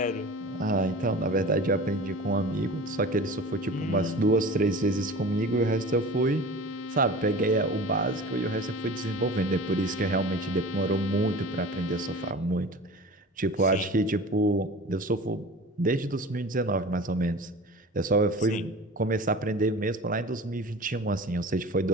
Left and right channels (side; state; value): both; normal; correlation 0.37